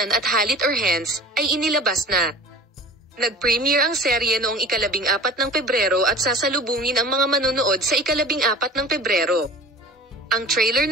at Halit Orhans, ay inilabas na. Nag-premiere ang serye noong 14 ng Pebrero at sasalubungin ang mga manunood sa 14 ng Pebrero. Ang trailer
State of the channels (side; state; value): both; normal; correlation 0.41